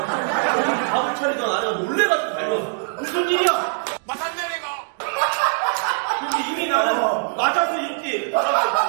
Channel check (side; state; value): left; silent; digital silence